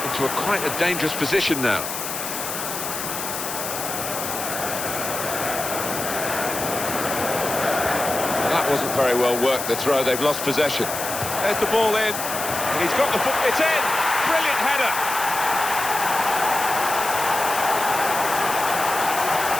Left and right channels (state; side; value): noise; left; hiss, 5 dB below the sound